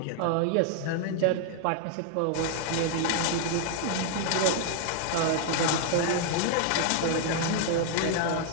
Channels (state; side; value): different; both; correlation 0.00